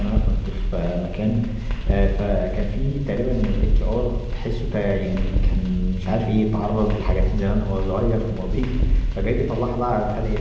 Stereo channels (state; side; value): identical; both; correlation 1.00